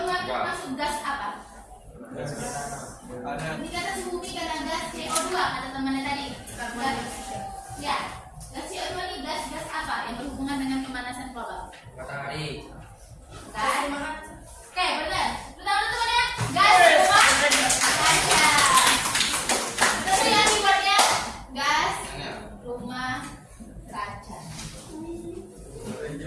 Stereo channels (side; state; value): both; identical; correlation 1.00